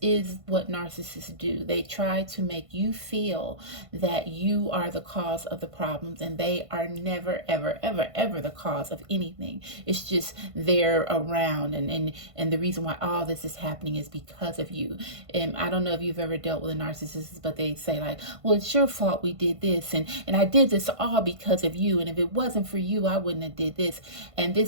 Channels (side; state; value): left; late; 1.5 ms